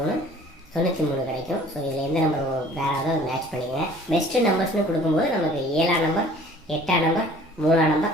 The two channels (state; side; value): normal; both; correlation 0.51